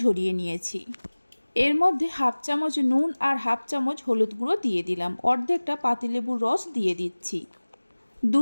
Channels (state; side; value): inverted; both; correlation -1.00